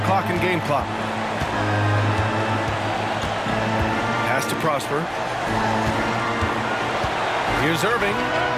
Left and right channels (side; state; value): both; identical; correlation 1.00